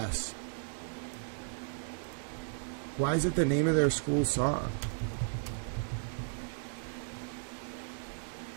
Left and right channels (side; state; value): left; silent; digital silence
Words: Why is it the name of their school song?